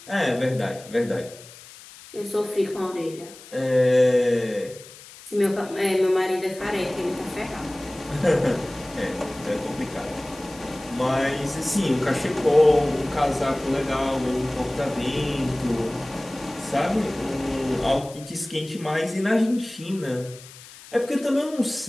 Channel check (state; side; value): noise; left; hiss, 19 dB below the sound